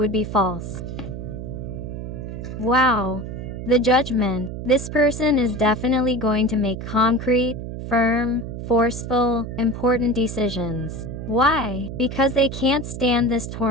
be false. Wow. The judgment. This person is definitely going to make concrete, firm, forceful, important decisions. Why? Because they can't stand this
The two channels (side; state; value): right; noise; hum, 7 dB below the sound